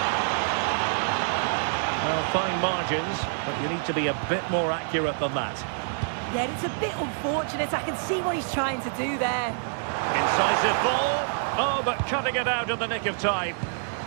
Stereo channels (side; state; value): left; silent; digital silence